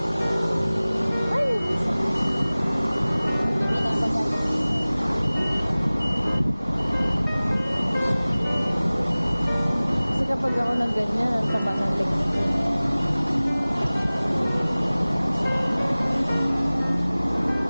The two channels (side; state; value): both; inverted; correlation -0.99